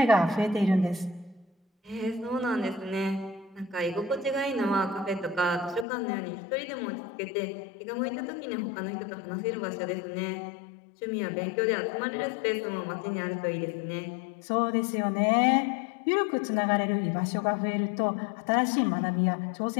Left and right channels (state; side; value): drops out; right; at 5.9 s